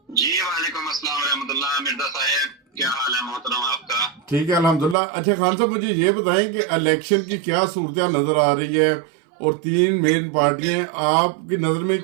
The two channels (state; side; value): drops out; left; at 5.0 s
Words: جی وعلیکم السلام ورحمۃ اللہ مرزا صاحب، کیا حال ہے محترم آپ کا؟ ٹھیک ہے الحمدللہ۔ اچھا خان صاحب، مجھے یہ بتائیں کہ الیکشن کی کیا صورتحال نظر آ رہی ہے اور تین مین پارٹیاں ہیں، آپ کی نظر میں